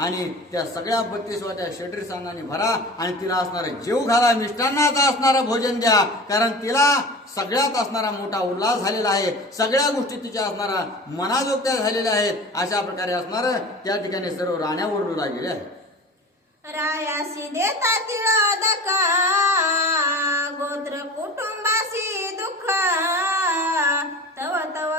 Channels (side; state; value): both; normal; correlation 0.36